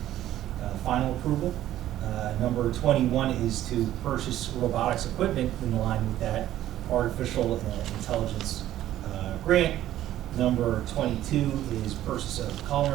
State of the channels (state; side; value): quieter; left; 13.1 dB